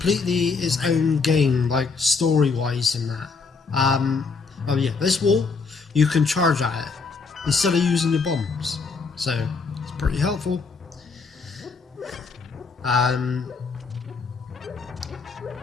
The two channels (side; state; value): right; quieter; 4.7 dB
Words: its own game, like story-wise in that. Oh yeah, this wall, you can charge at it instead of using your bombs, so it's pretty helpful.